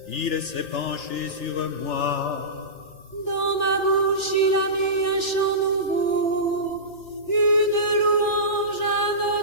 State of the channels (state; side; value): late; right; 3.4 ms